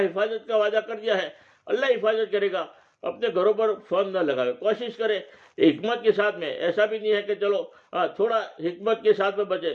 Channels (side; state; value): both; identical; correlation 1.00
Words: کا وعدہ کر دیا ہے, اللہ حفاظت کرے گا. اپنے گھروں پر فون نہ لگاوے, کوشش کرے حکمت کے ساتھ میں. ایسا بھی نہیں ہے کہ چلو تھوڑا حکمت کے ساتھ میں بچے.